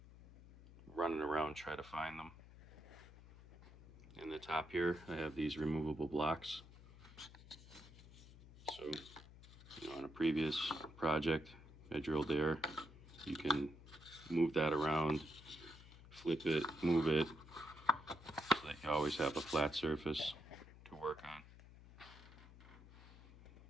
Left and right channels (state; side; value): noise; left; hum, 19 dB below the sound